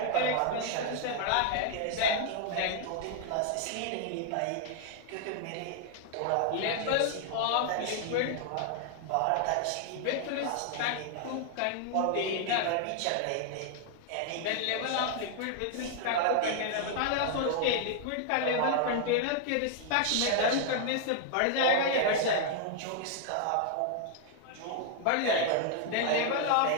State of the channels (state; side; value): different; both; correlation 0.00